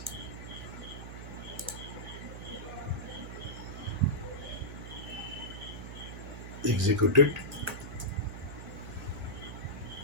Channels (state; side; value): noise; right; hum, 9 dB below the sound